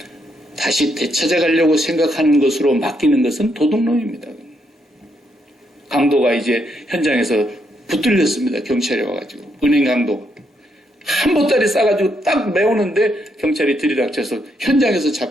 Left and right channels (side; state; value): both; normal; correlation 0.77